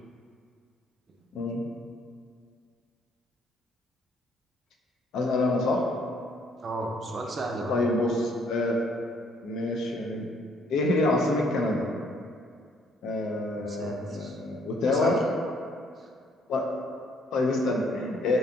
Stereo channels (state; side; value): normal; both; correlation 0.65